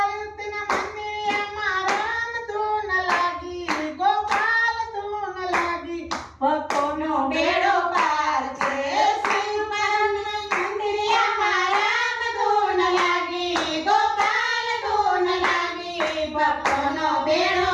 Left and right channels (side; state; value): both; identical; correlation 1.00